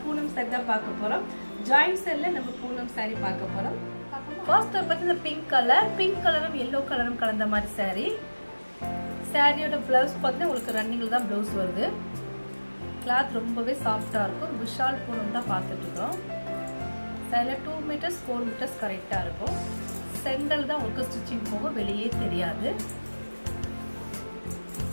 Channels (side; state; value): both; inverted; correlation -1.00